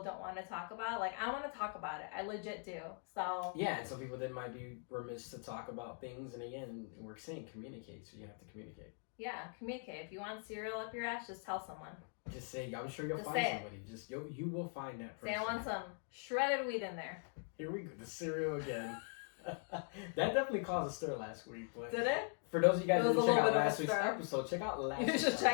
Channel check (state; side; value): silent; right; 50 dB below the other